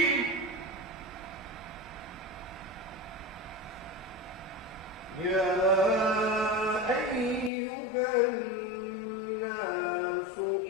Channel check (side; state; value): right; drops out; at 7.5 s